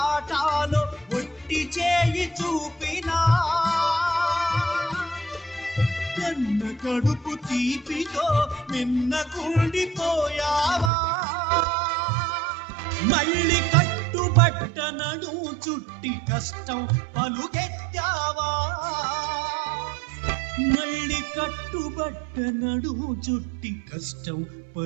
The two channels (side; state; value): left; drops out; at 10.9 s